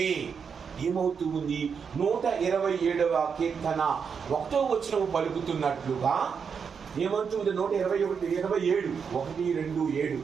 ఏమవుతుంది? 127వ కీర్తన 1వ వచనం పలుకుతున్నట్లుగా ఏమంటుంది? 127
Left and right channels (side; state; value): left; quieter; 6.3 dB